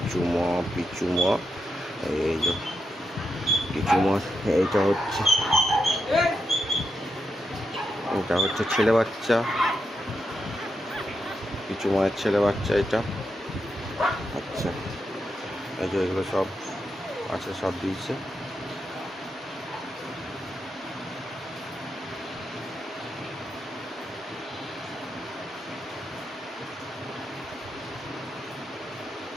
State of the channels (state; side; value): normal; both; correlation 0.85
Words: ম পিচ্চু ম। এই যে পিচ্চু ম। এটা হচ্ছে ছেলে বাচ্চা, পিচ্চু মায়ের ছেলে বাচ্চা এটা। আচ্ছা, এই যে এগুলো সব আছে, সব দিয়েছে।